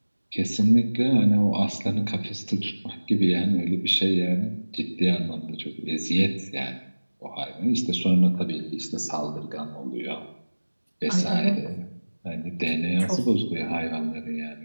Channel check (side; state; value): both; inverted; correlation -1.00